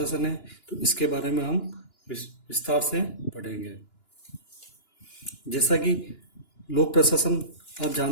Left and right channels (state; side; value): late; right; 2.9 ms